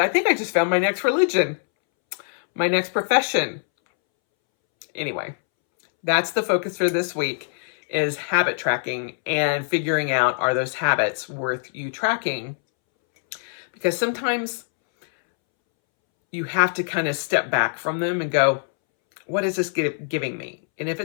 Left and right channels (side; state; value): right; silent; 63 dB below the other